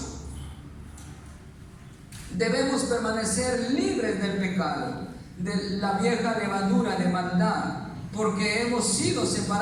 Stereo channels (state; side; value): identical; both; correlation 1.00